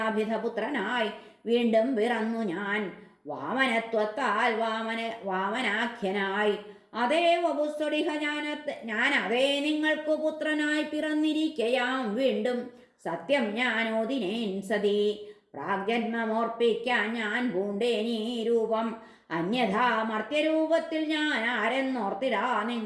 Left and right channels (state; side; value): identical; both; correlation 1.00